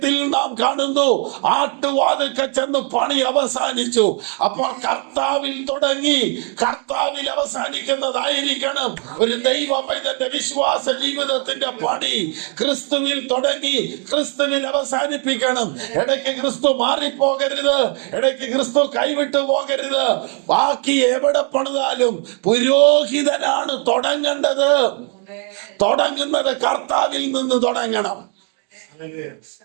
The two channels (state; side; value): quieter; left; 38.6 dB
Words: നാം കാണുന്നു, ആട്ടുവാതിൽക്കൽ ചെന്ന് പണി അവസാനിച്ചു. അപ്പോൾ കർത്താവിൽ തുടങ്ങി കർത്താവിൽ അവസാനിക്കുന്നതായിരിക്കണം ഒരു ദൈവ പൈതന്റെ വിശ്വാസ ജീവിതത്തിന്റെ പണി. ക്രിസ്തുവിൽ തുടങ്ങി ക്രിസ്തുവിൽ അവസാനിപ്പിക്കണം. ഇടയ്ക്ക് ക്രിസ്തു മാറിപ്പോകരുത്, ഇടയ്ക്ക് ക്രിസ്തു കൈവിട്ടു പോകരുത്. ബാക്കി എവിടെ പണിതാലും പുരോഹിതനാണ് തുടങ്ങേണ്ടത്. തുടങ്ങുന്നത് കർത്താവിൽ നിന്ന് തുടങ്ങണം.